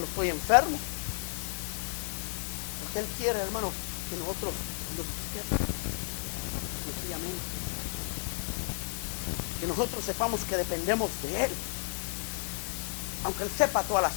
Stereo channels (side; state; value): right; silent; digital silence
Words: estoy enfermo, porque Él quiere, hermano, que nosotros lo busquemos sencillamente, que nosotros sepamos que dependemos de Él, aunque Él sepa todas las